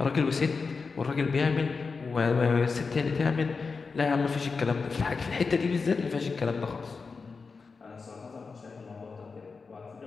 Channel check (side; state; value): right; quieter; 4.7 dB